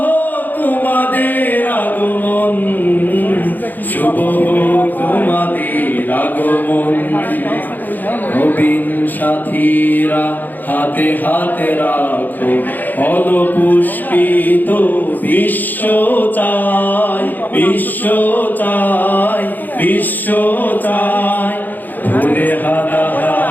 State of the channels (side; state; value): right; late; 0.086 ms